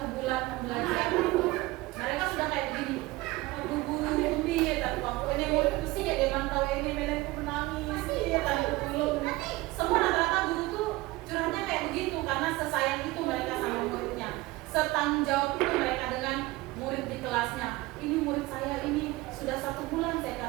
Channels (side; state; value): left; quieter; 20.2 dB